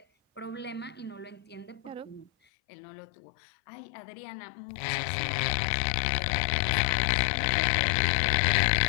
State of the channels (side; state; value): right; drops out; at 2.3 s